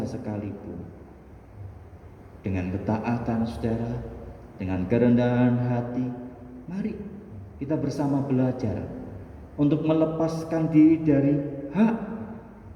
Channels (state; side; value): identical; both; correlation 1.00